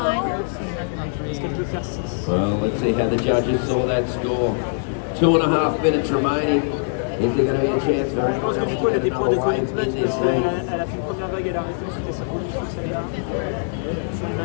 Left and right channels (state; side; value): silent; right; 56 dB below the other